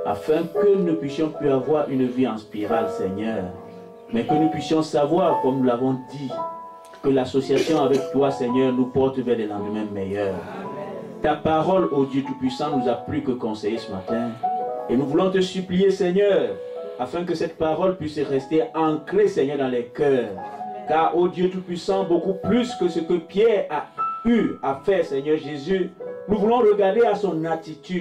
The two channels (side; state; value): both; identical; correlation 1.00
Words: afin que nous puissions plus avoir une vie en spirale, Seigneur, mais que nous puissions savoir, comme nous l'avons dit, que l'association avec toi, Seigneur, nous porte vers des lendemains meilleurs. Ta parole, ô Dieu Tout-Puissant, nous a plus que conseillé ce matin. Et nous voulons te supplier, Seigneur, afin que cette parole puisse rester ancrée, Seigneur, dans les cœurs. Car, ô Dieu Tout-Puissant, beaucoup plus que ce que Pierre a eu à faire, Seigneur Jésus, nous voulons regarder à son